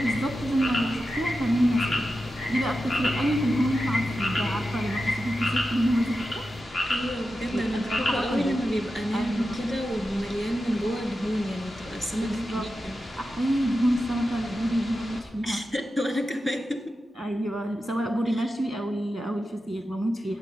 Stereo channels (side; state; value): both; normal; correlation 0.91